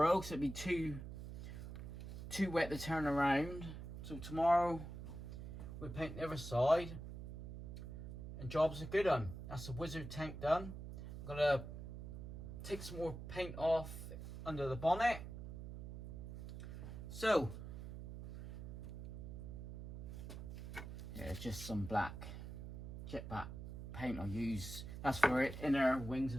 so it'd be too wet to turn around. So tomorrow we paint the other side and job's a good one. That's the wizard tank done. I'm gonna take some more paint off under the bonnet. So yeah, just some black jet black paint I'll use. That's for it, inner wings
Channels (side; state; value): right; noise; hum, 9 dB below the sound